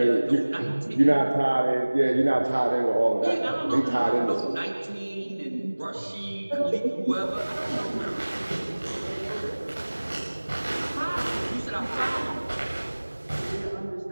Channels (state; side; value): inverted; both; correlation -1.00